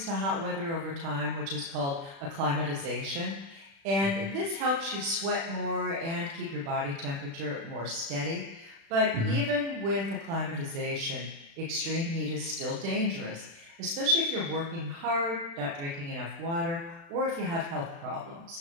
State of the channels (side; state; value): left; late; 36 ms